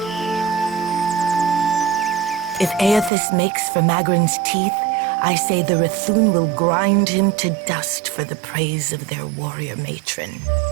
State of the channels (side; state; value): left; drops out; at 3.1 s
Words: If Aethys makes for Magrin's teeth, I say the Rathun will grind him to dust for the praise of their warrior matron.